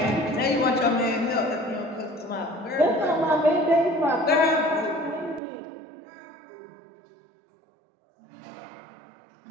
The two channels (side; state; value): left; drops out; at 5.4 s